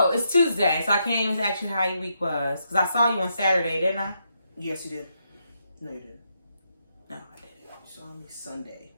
it's Tuesday, so I can't even ask you how your week was. Because I saw you on Saturday, didn't I? Yes, you did. No, you didn't. No, I didn't. You saw me Sunday.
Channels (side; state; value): both; inverted; correlation -0.80